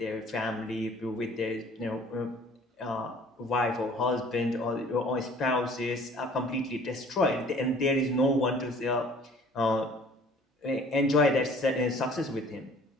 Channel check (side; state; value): both; normal; correlation 0.52